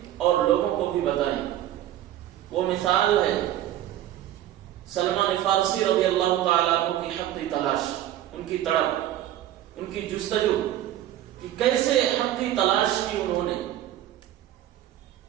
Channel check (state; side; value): quieter; left; 12.8 dB